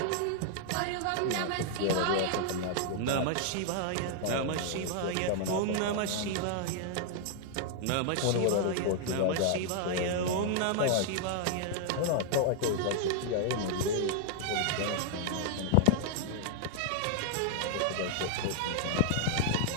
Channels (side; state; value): both; different; correlation -0.01